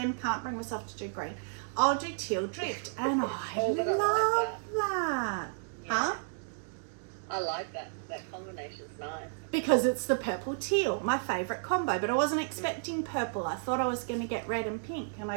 can't bring myself to do green. I'll do teal drift. And I love that. Huh? I like that. That combination's nice. Because it's the purple teal, my favourite combo. But I wasn't expecting purple. I thought I was going to get red and pink, and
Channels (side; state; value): left; silent; digital silence